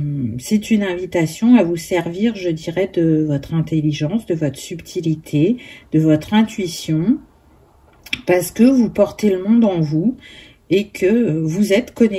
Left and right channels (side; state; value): both; identical; correlation 1.00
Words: c'est une invitation à vous servir, je dirais, de votre intelligence, de votre subtilité, de votre intuition, parce que vous portez le monde en vous et que vous êtes